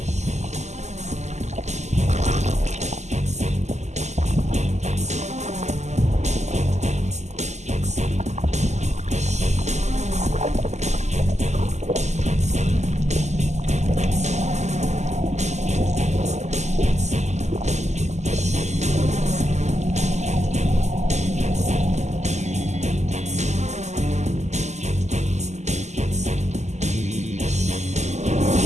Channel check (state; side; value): late; left; 0.33 ms